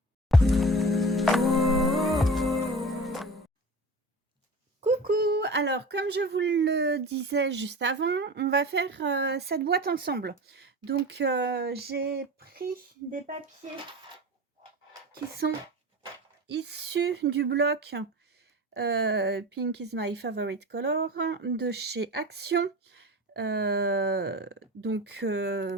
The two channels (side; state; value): both; normal; correlation 0.33